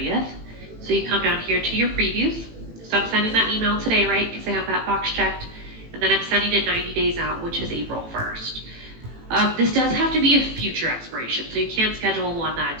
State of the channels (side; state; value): left; late; 18 ms